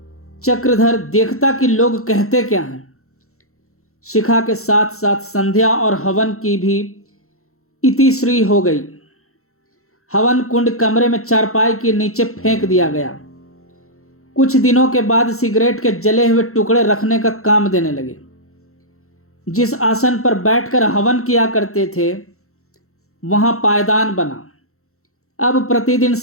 चक्रधर देखता कि लोग कहते क्या हैं। शिखा के साथ साथ संध्या और हवन की भी इतिश्री हो गई। हवन कुंड कमरे में चारपाई के नीचे फेंक दिया गया। कुछ दिनों के बाद सिगरेट के जले हुए टुकड़े रखने का काम देने लगे। जिस आसन पर बैठकर हवन किया करते थे वहां पायदान बना। अब प्रतिदिन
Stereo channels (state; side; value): late; right; 0.63 ms